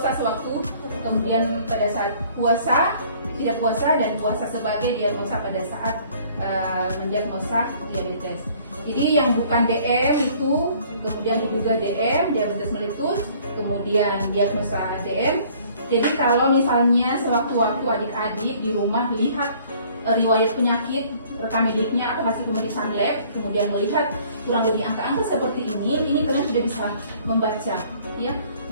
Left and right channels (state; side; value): inverted; both; correlation -0.56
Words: sewaktu, kemudian pada saat puasa, tidak puasa, dan puasa sebagai diagnosa pada saat mendiagnosa diabetes. Jadi yang bukan DM itu kemudian diduga DM, diabetes meletus, kemudian diagnosa DM. Jadi kalau misalnya sewaktu-waktu adik-adik di rumah lihat riwayat penyakit, rekam mediknya atau hasil pemeriksaan lab, kemudian melihat kurang lebih angka-angka seperti ini kalian sudah bisa membaca ya